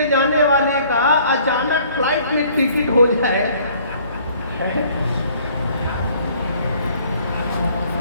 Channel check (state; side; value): inverted; both; correlation -0.58